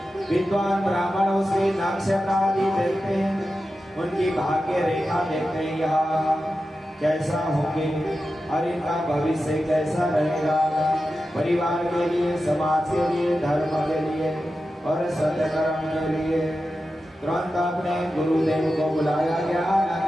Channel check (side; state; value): both; normal; correlation 0.92